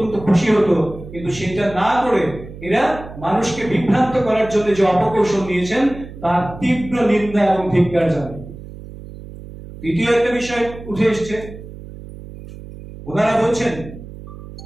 খুশি হতো। কিন্তু সেটা না করে এরা মানুষকে বিভ্রান্ত করার জন্য যে অপকৌশল নিয়েছেন, তার তীব্র নিন্দা এবং ধিক্কার জানাই। দ্বিতীয় একটা বিষয় উঠে এসছে, ওনারা বলছেন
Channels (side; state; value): right; noise; hum, 14 dB below the sound